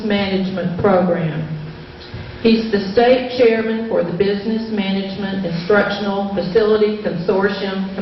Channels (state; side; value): identical; both; correlation 1.00